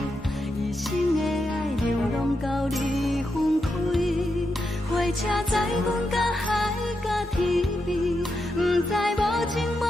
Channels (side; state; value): both; normal; correlation 0.85